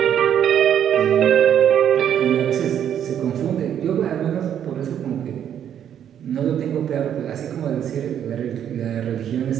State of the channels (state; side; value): quieter; left; 9.5 dB